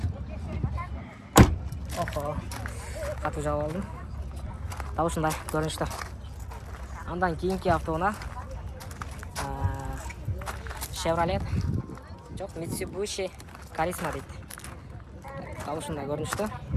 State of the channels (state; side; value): identical; both; correlation 1.00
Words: Охо. Қату жауып алдым. Таушындай көрінішті. Андан кейінгі автоуна Chevrolet. Жоқ, Mitsubishi Charisma дейді. Таушындай көрінішті.